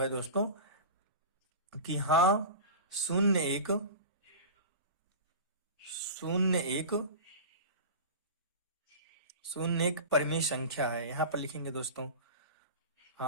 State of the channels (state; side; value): inverted; both; correlation -0.31